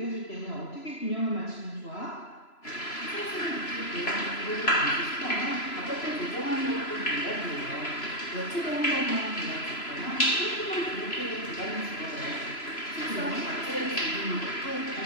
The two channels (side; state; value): right; late; 3.0 ms